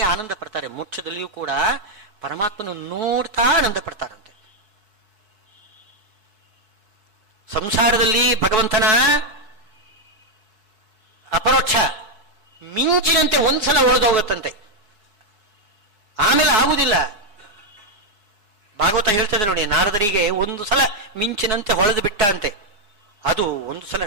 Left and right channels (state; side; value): late; left; 4.7 ms